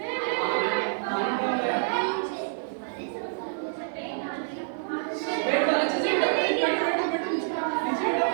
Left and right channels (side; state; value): left; silent; 56 dB below the other